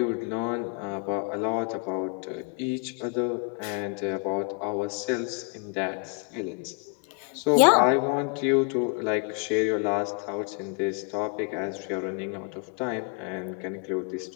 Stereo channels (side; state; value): right; quieter; 37.5 dB